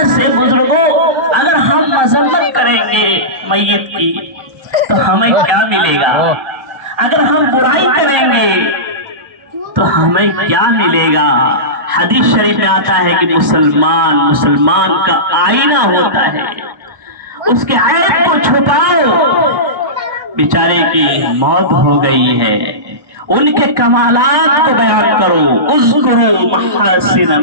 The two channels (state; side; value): late; left; 1.1 ms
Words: سے بزرگوں اگر ہم مذمت کریں گے میت کی تو ہمیں کیا ملے گا؟ اگر ہم برائی کریں گے تو ہمیں کیا ملے گا؟ حدیث شریف میں آتا ہے کہ مسلمان کا آئینہ ہوتا ہے، اس کے عیب کو چھپاؤ، بیچارے کی موت ہو گئی ہے، ان کے کمالات کو بیان کرو، اذکروا محاسن